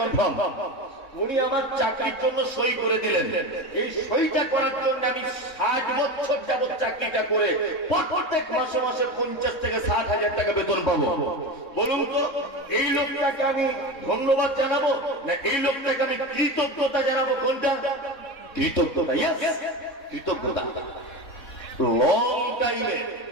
উনি আমার চাকরির জন্য সই করে দিলেন। এই সইটা করার জন্য আমি 60 বছর যাবত চাকরিটা করে প্রত্যেক মাসে মাসে 50 থেকে 60,000 টাকা বেতন পাবো। বলুন তো এই লোকটাকে আমি ধন্যবাদ জানাবো না এই লোকটাকে আমি কৃতজ্ঞতা জানাবো? কোনটা? কৃতজ্ঞতা। কৃতজ্ঞতা। লং টাইমে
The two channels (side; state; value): right; late; 3.7 ms